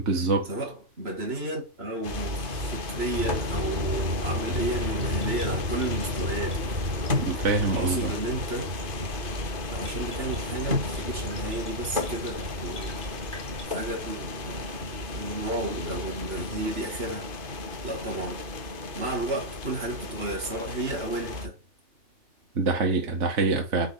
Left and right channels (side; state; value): left; late; 3.0 ms